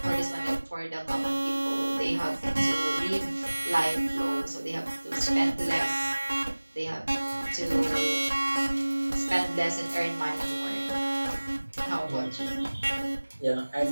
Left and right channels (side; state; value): both; inverted; correlation -1.00